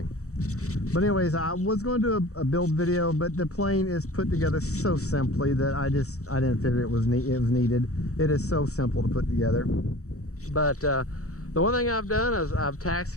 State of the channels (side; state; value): right; late; 0.65 ms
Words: But anyways, I was going to do a build video, but the plane is put together so simply that I didn't figure it was needed. It is so simple to put together. But the one thing I've done is I've